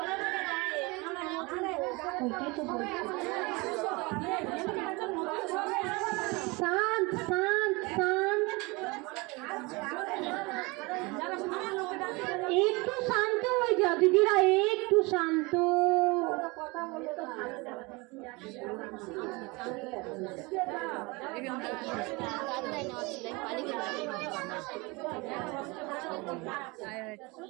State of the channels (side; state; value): left; quieter; 25.8 dB